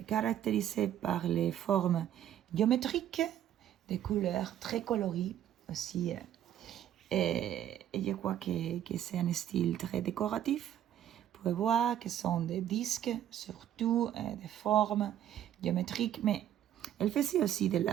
caractérisé par les formes géométriques, des couleurs très colorées aussi. Et je crois que c'est un style très décoratif. Vous pouvez voir que ce sont des disques, surtout des formes géométriques, mais elle faisait aussi de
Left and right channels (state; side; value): quieter; left; 10.9 dB